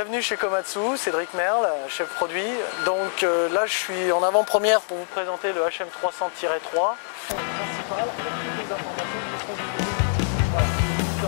Bienvenue chez Komatsu, Cédric Merle, chef produit. Donc là je suis en avant-première pour vous présenter le HM300-3 principal avec toutes les informations qui seront disponibles. Voilà,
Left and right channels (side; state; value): right; silent; digital silence